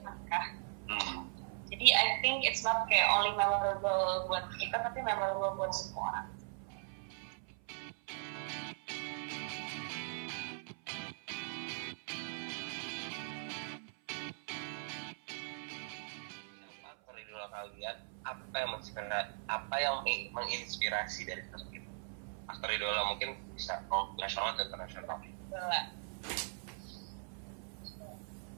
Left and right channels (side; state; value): left; silent; 52 dB below the other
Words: Jadi I think it's not kayak only memorable buat kita, tapi memorable buat semua orang. Aktor idola kalian, apa yang menginspirasi dari sosok itu? Aktor idola mungkin bisa nasional atau internasional.